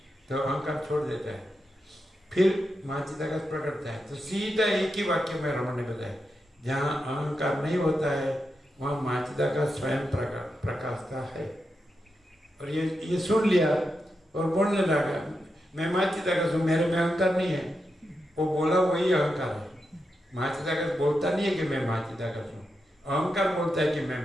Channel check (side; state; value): both; normal; correlation 0.87